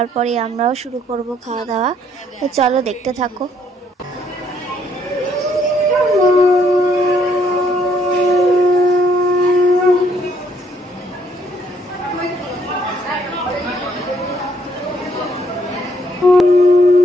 আমরাও শুরু করব খাওয়া দাওয়া। তো চলো দেখতে থাকো।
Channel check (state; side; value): normal; both; correlation 0.68